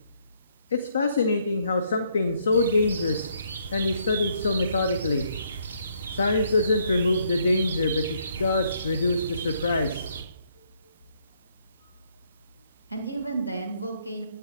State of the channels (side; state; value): both; inverted; correlation -0.70